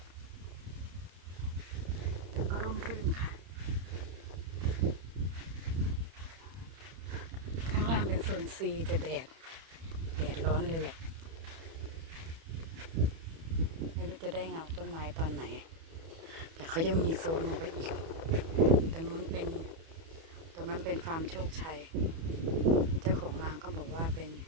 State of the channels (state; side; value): late; left; 31 ms